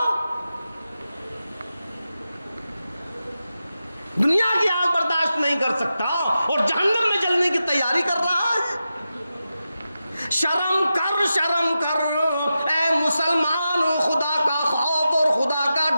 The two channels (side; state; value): both; inverted; correlation -0.91